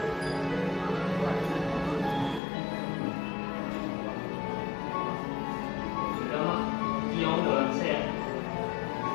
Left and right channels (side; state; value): right; drops out; at 2.4 s